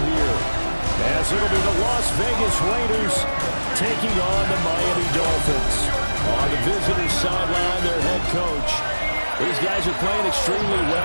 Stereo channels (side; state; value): both; inverted; correlation -1.00